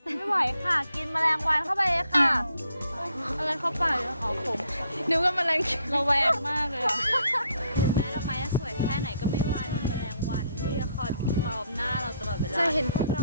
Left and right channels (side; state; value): both; inverted; correlation -0.70